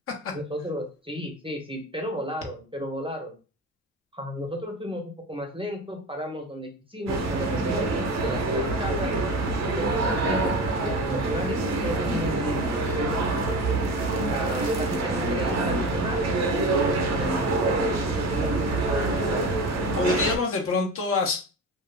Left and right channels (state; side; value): normal; both; correlation 0.28